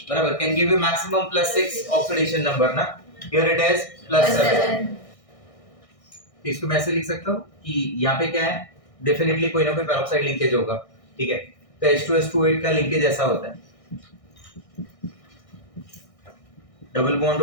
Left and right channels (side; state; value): right; late; 1.6 ms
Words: बराबर, can give you maximum +6 oxidation number ना, हियर इट इज +7। तो इसको मैं ऐसे लिख सकता हूँ कि यहाँ पे क्या है, डेफिनेटली कोई ना कोई पेरोक्साइड लिंकेज होगा, ठीक है। तो H2S28 का लिंकेज ऐसा होता है, डबल बॉन्ड